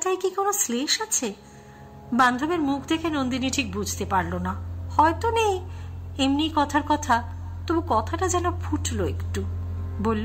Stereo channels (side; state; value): both; identical; correlation 1.00